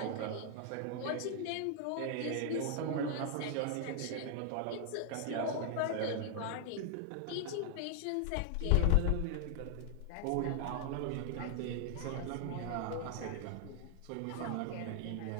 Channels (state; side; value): different; both; correlation 0.00